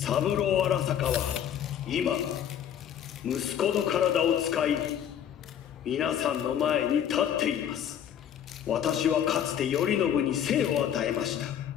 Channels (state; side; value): quieter; right; 9.5 dB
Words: 郎荒坂は今、息子の体を使い、皆さんの前に立っています。私はかつて頼信に生を与えました。